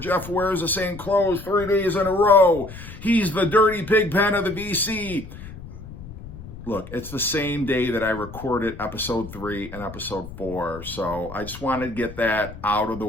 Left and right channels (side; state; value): left; noise; rumble, 14 dB below the sound